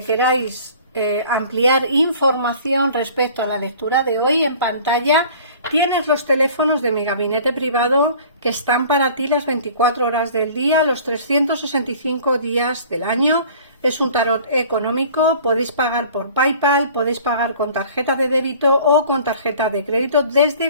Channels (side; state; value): both; inverted; correlation -0.48